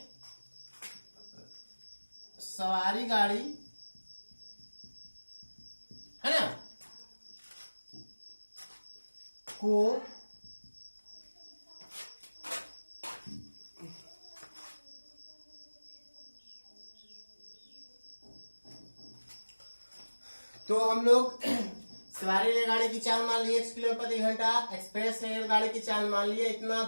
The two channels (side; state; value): both; inverted; correlation -1.00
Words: सवारी गाड़ी है ना को तो हम लोग सवारी रेलगाड़ी की चाल मान ली 1 किलोमीटर प्रति घंटा, एक्सप्रेस रेलगाड़ी की चाल मान लिया इतना,